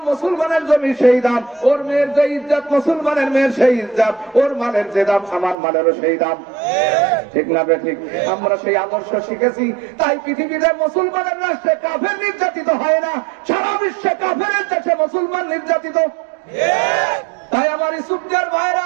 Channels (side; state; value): left; drops out; at 5.6 s